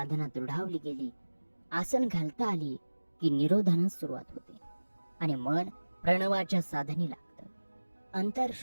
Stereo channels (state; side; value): inverted; both; correlation -1.00